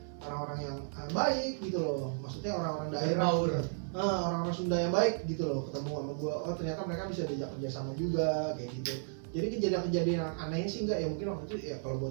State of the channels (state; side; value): silent; left; digital silence